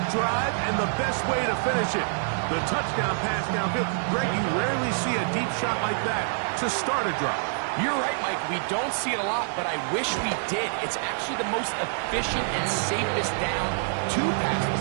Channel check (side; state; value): left; silent; 61 dB below the other